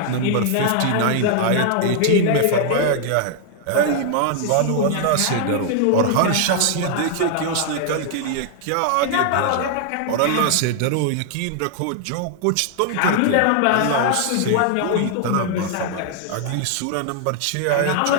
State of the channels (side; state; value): both; different; correlation 0.00